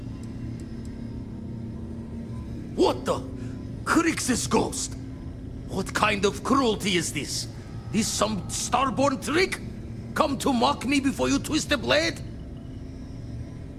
What the? Crix's ghost? What kind of cruelty is this? This some starborn trick? Come to mock me before you twist the blade?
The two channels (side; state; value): both; identical; correlation 1.00